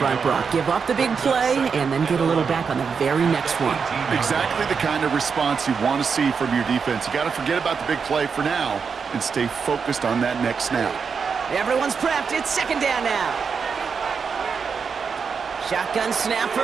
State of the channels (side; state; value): left; quieter; 5.8 dB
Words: Brock. Give up the big play and then get a little back on the very next one. Exactly the kind of response you want to see from your defense. You got to forget about the big play for now and stay focused on that next snap. Everyone's prepped. It's 2nd down now. Shotgun snap